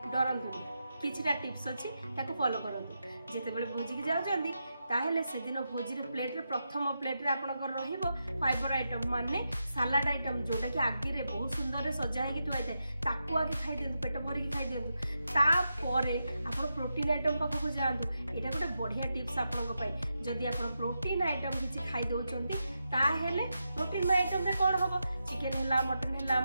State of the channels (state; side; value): inverted; both; correlation -0.87